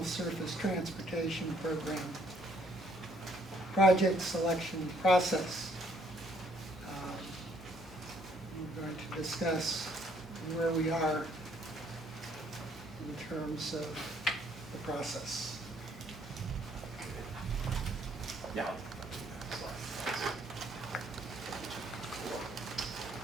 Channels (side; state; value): both; normal; correlation 0.66